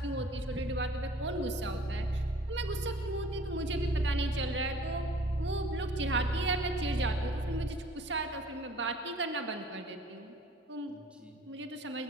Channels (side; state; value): both; normal; correlation 0.52